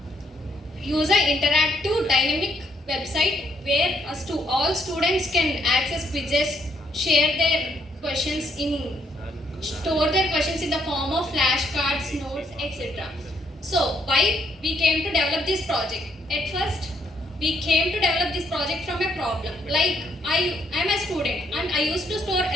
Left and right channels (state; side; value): normal; both; correlation 0.72